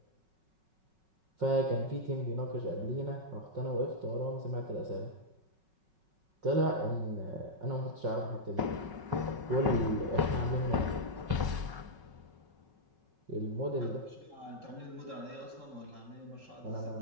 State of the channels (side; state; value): left; late; 5.4 ms